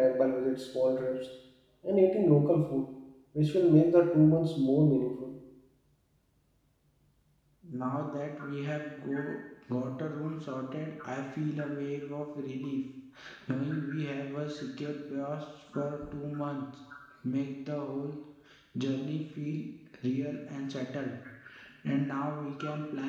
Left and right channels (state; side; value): identical; both; correlation 1.00